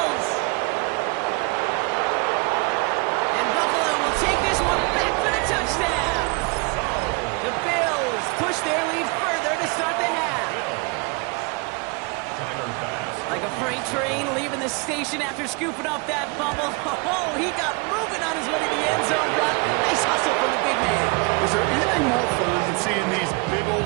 And Buffalo will take this one back for the touchdown. The Bills push their lead further to start the half. Like a freight train leaving the station after scooping up that fumble. Oh, he got moving on his way to the end zone, Brock. Nice hustle from the big man. Is there anything more fun than seeing these big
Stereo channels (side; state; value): left; quieter; 30.4 dB